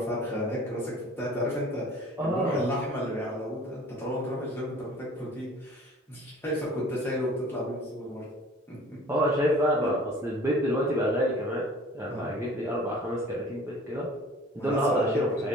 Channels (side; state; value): both; normal; correlation 0.47